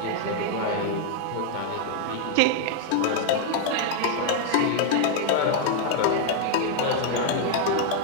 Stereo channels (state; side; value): different; both; correlation 0.00